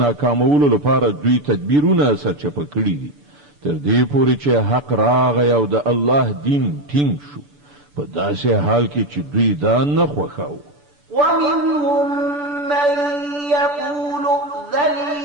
لپاره دوی تدبیرونه سرچپه کړي دي تر دې پورې چې حق راغی او د الله دین ټینګ شو په داسې حال کې چې دوی دا نه خوښاوه. ومنهم من يقول ائذن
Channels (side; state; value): left; late; 6.9 ms